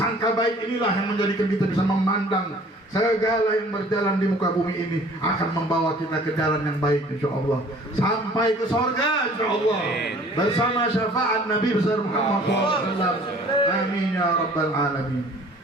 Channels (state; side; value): normal; both; correlation 0.51